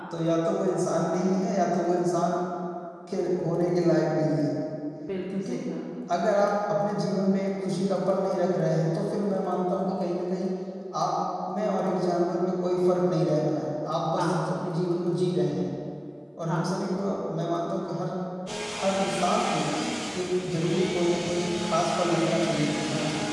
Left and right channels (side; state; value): both; identical; correlation 1.00